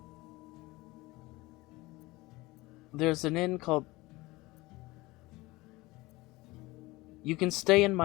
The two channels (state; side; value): quieter; right; 21.0 dB